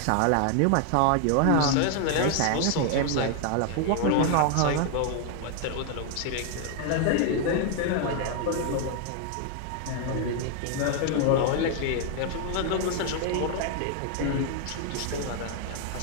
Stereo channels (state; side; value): different; both; correlation 0.00